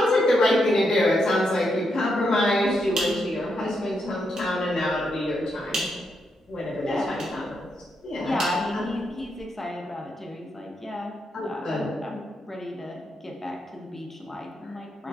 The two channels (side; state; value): both; normal; correlation 0.81